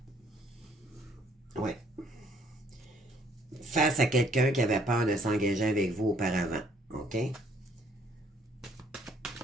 ouais. Face à quelqu'un qui avait peur de s'engager avec vous auparavant, OK?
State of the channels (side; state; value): both; normal; correlation 0.64